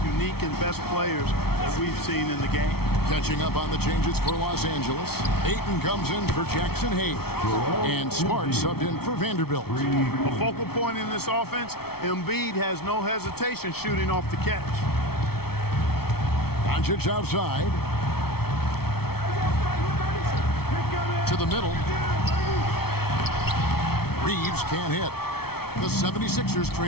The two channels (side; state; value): right; late; 0.95 ms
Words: unique and best players that we've seen in the game. Catching up on the changes for Los Angeles. Ayton comes in for Jackson Hayes. And Smart subbed in for Vanderbilt. A focal point in this offense, Embiid has no hesitation shooting off the catch. Doncic outside. To the middle. Reeves can't hit. The 76ers